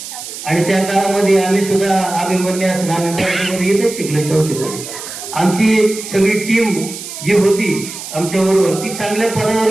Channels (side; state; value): right; noise; hiss, 10 dB below the sound